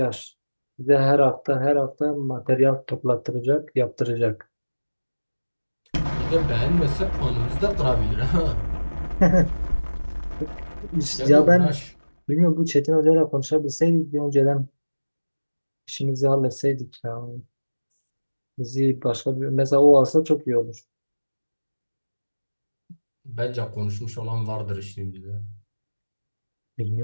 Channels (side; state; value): both; inverted; correlation -1.00